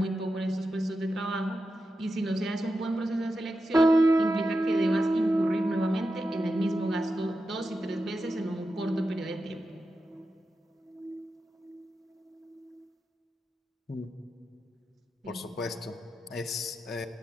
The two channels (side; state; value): both; normal; correlation 0.90